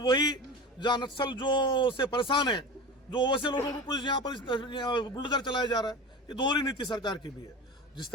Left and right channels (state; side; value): normal; both; correlation 0.30